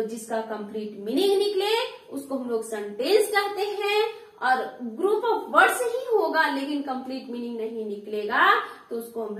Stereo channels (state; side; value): identical; both; correlation 1.00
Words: जिसका कंप्लीट मीनिंग निकले उसको हम लोग सेंटेंस कहते हैं, और ग्रुप ऑफ वर्ड्स ही होगा लेकिन कंप्लीट मीनिंग नहीं निकलेगा तो उसको हम